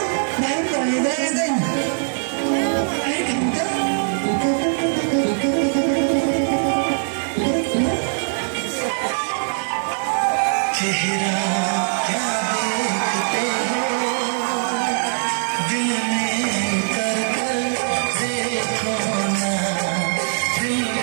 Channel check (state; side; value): silent; left; digital silence